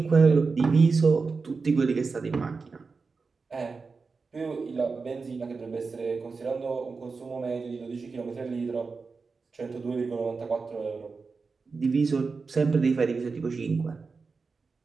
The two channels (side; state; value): left; quieter; 4.5 dB